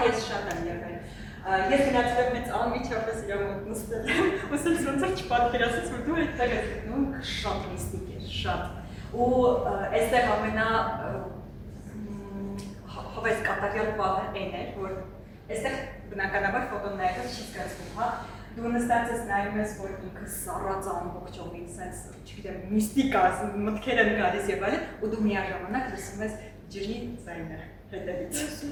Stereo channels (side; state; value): both; identical; correlation 1.00